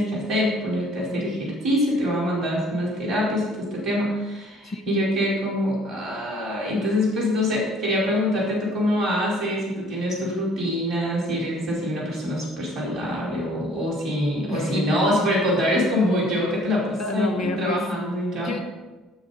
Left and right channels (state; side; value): normal; both; correlation 0.56